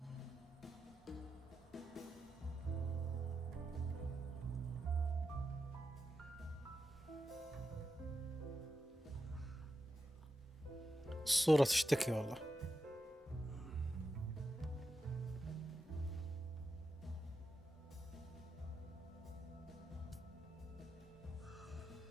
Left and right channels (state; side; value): normal; both; correlation 0.88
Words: الصورة تشتكي والله.